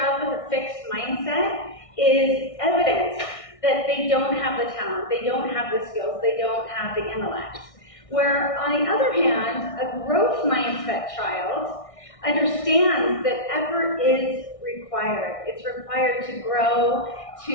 with a fixed mindset is evidence that they don't have the talent, they don't have the skills, they don't have the intellect. Where, on the other hand, a growth mindset child understands that effort is required. It's required to grow,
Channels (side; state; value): right; late; 1.6 ms